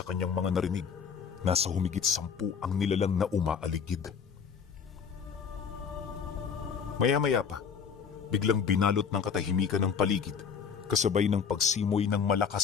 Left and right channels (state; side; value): quieter; right; 6.7 dB